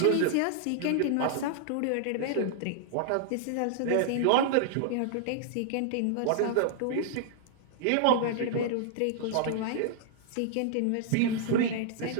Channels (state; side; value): different; both; correlation -0.01